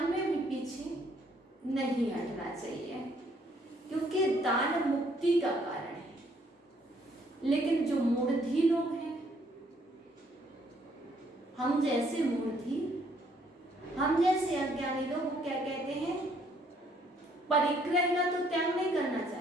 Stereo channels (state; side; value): normal; both; correlation 0.66